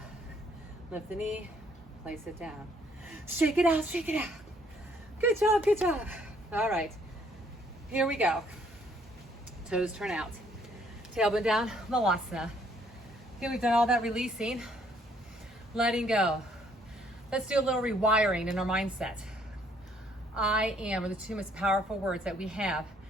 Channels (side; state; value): both; normal; correlation 0.65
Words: lift the knee, place it down. Shake it out, shake it out. Good job, good job. All right, here we go. Toes turn out. Tailbone down, Malasana. Okay, we've done all that releasing, letting go. Let's do a little rewiring in our mindset. I am are the 2 most powerful words that we have